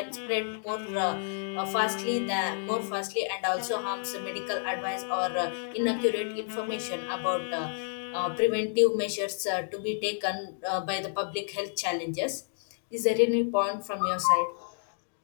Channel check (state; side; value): silent; right; digital silence